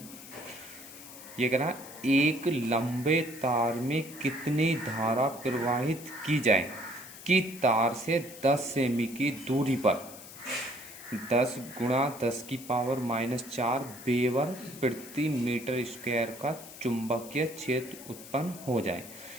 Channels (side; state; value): left; noise; hiss, 16 dB below the sound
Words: ये कह रहा है एक लंबे तार में कितनी धारा प्रवाहित की जाए कि तार से 10 सेमी की दूरी पर 10 गुणा 10 की पावर -4 वेबर प्रति मीटर स्क्वायर का चुंबकीय क्षेत्र उत्पन्न हो जाए।